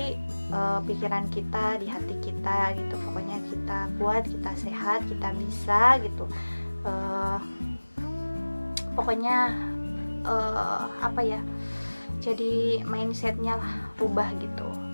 pikiran kita, di hati kita gitu. Pokoknya kita kuat, kita sehat, kita bisa gitu. Pokoknya jadi mindsetnya lah rubah gitu.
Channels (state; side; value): inverted; both; correlation -1.00